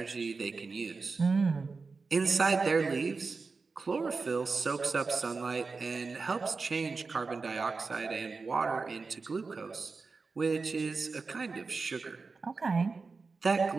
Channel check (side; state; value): left; quieter; 4.3 dB